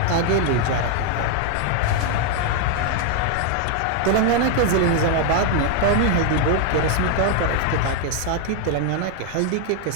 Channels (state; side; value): different; both; correlation 0.01